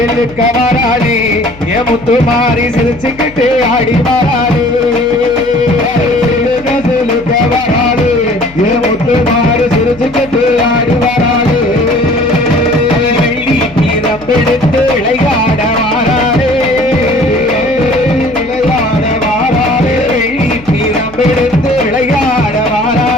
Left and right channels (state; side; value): noise; left; hum, 20 dB below the sound